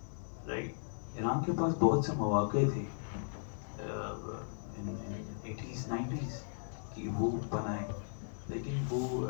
Right? Iran کے پاس بہت سے مواقع تھے eighties 90s کہ وہ بنائے, لیکن وہ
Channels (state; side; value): silent; right; 53 dB below the other